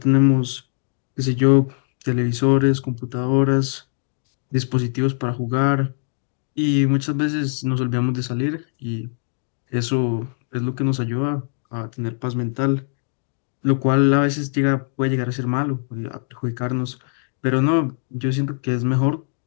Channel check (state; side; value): silent; right; digital silence